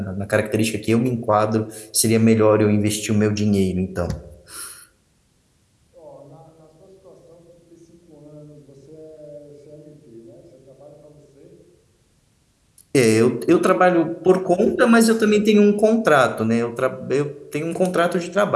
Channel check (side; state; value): both; identical; correlation 1.00